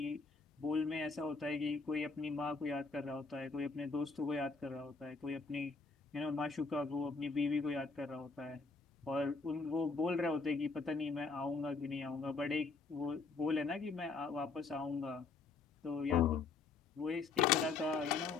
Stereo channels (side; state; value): right; quieter; 4.4 dB